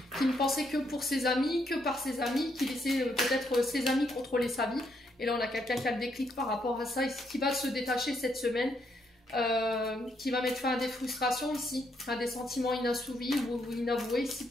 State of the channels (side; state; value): both; normal; correlation 0.75